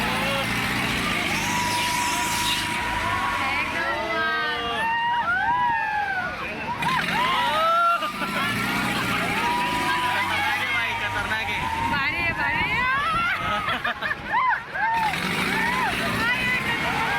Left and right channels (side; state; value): both; identical; correlation 1.00